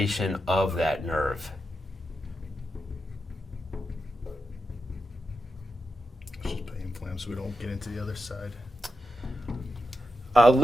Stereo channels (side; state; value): both; normal; correlation 0.88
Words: of that nerve. Let's just pain inflam so we don't get into the other side.